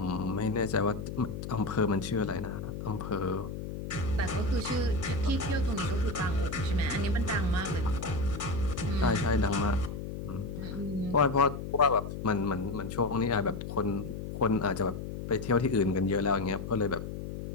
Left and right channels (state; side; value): noise; left; hum, 7 dB below the sound